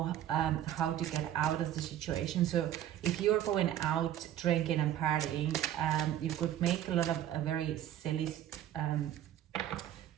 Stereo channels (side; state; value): left; quieter; 11.7 dB